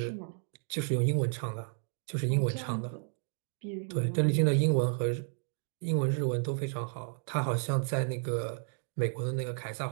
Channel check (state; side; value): silent; left; 56 dB below the other